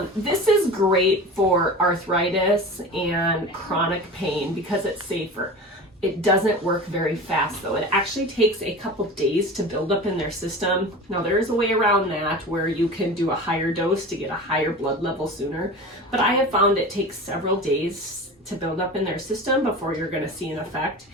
This is great for arthritis and chronic pain because it's safer. It doesn't work very fast though. It actually takes a couple days to build up in their system. Now there is a way around that where you can do a higher dose to get a higher blood level sooner. But I have found it takes several days to build up in their system before you're going to see an effect.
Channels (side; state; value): both; normal; correlation 0.33